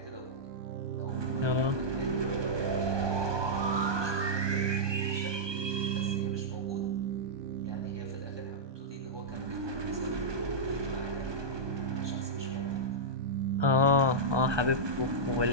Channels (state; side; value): late; left; 1.2 ms